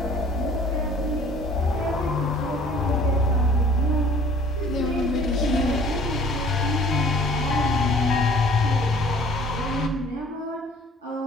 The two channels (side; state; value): both; normal; correlation 0.51